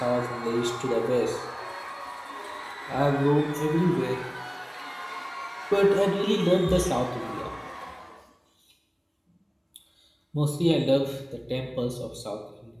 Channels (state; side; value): identical; both; correlation 1.00